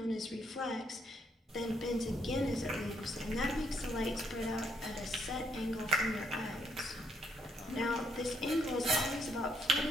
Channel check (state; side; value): normal; both; correlation 0.74